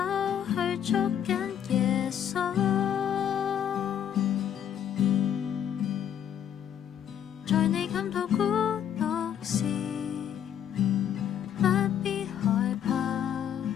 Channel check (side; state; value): right; quieter; 9.4 dB